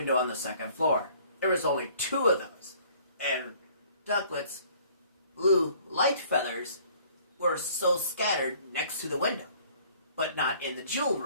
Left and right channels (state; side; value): inverted; both; correlation -0.56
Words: on the second floor. There was only 2 of those. And Ducklet's blue light feathers were so scattered next to the window. But not in the jewel